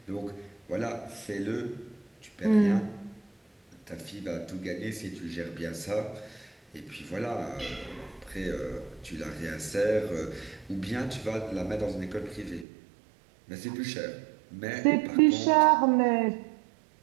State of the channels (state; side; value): drops out; left; at 12.7 s